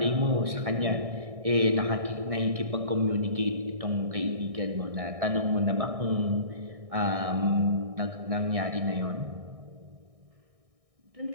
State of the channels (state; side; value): late; left; 1.6 ms